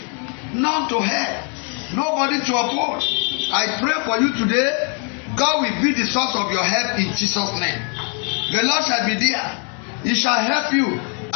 none to help, nobody to oppose. I pray for you today, God will be the source of your help in Jesus' name. The Lord shall be there. He shall help you.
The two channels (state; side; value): quieter; right; 37.2 dB